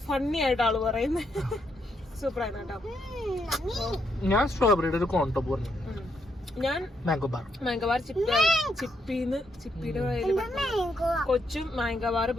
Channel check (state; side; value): normal; both; correlation 0.77